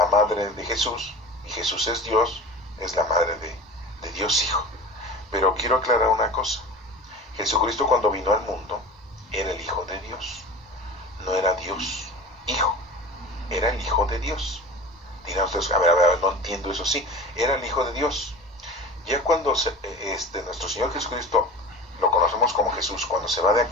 madre de Jesús, y Jesús es Dios, es la madre de Dios Hijo. Pero quiero aclarar una cosa. Jesucristo cuando vino al mundo era el Hijo de Dios. No era Dios Hijo, era el Hijo de Dios. Dirán ustedes, a ver, no entiendo eso. Sí, era el Hijo de Dios. Ya cuando nuestro Señor Jesucristo lo conocemos como Jesús, cuando se va de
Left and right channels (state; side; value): normal; both; correlation 0.35